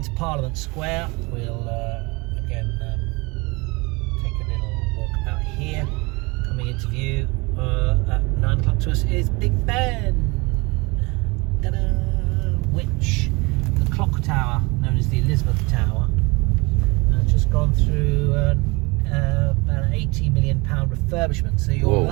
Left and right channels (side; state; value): left; quieter; 26.2 dB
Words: Parliament Square, we'll again take a little walk out here. Coming into view at 9 o'clock to us is Big Ben, ta-da! Which the clock tower, known as the Elizabeth Tower, has just gone through about an £80 million refurbishment. So you're